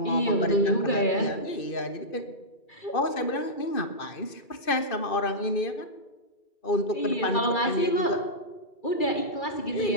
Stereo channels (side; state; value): right; late; 2.5 ms